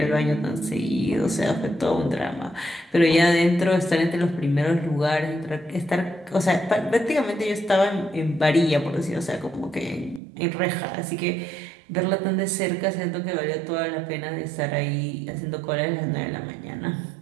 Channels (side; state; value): left; drops out; at 10.2 s